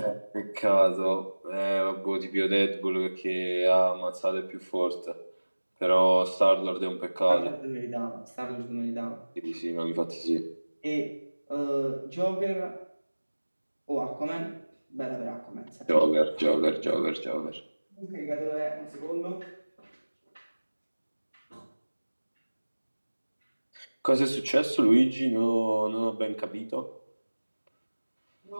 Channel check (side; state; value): both; inverted; correlation -1.00